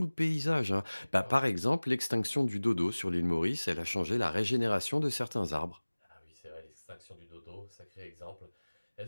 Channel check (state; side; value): inverted; both; correlation -1.00